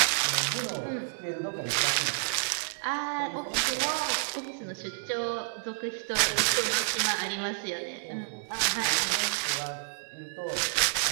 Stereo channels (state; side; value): silent; left; 57 dB below the other